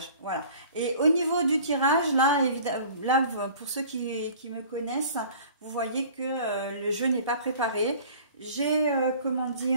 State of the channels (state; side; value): inverted; both; correlation -0.48